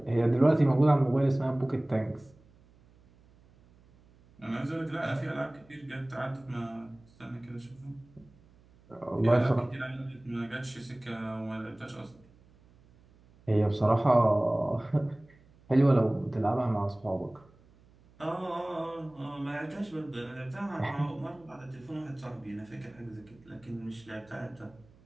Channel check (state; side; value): noise; right; hum, 28 dB below the sound